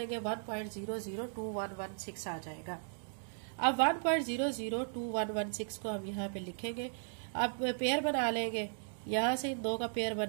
1.002116 आ जाएगा। अब 1.002116 को हम यहाँ पे लिखेंगे। अब पेयर बना लेंगे, यहाँ से इन दो का पेयर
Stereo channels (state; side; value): silent; left; digital silence